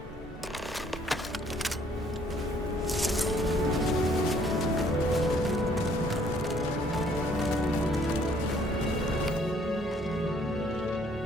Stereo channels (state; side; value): normal; both; correlation 0.62